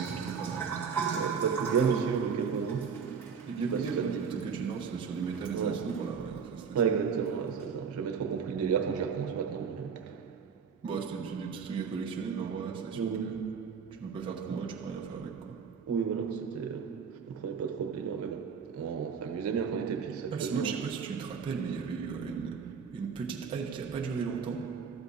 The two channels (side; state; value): left; quieter; 6.2 dB